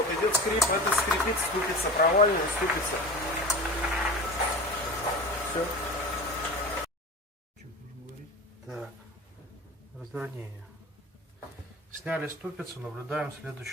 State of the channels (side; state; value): both; normal; correlation 0.33